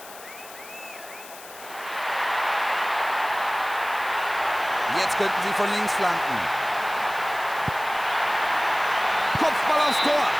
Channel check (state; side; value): noise; left; hiss, 17 dB below the sound